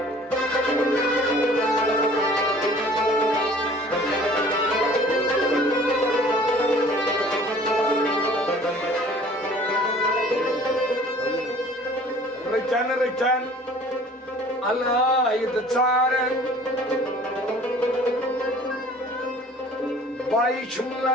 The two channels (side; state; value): both; normal; correlation 0.50